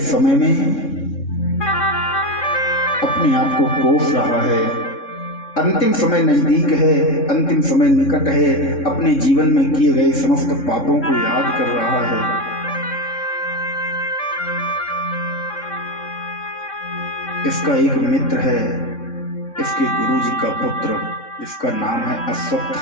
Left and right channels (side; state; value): right; late; 3.6 ms